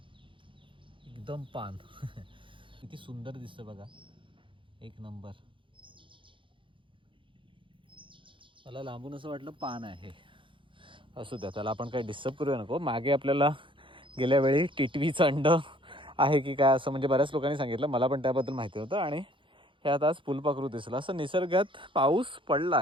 एकदम पान किती सुंदर दिसतं बघा. एक नंबर. मला लांबून असं वाटलं पान आहे. असू द्या त्याला आपण काही डिस्टर्ब करूया नको. मागे आपल्याला गेल्या वेळी टिटवीचं अंड आहे की काय असं म्हणजे बऱ्याच लोकांनी सांगितलं. मला पण त्याबद्दल माहिती होतं. आणि ह्यात आज फुलपाखरू दिसलं. असं निसर्गात पाऊस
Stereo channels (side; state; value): left; late; 0.25 ms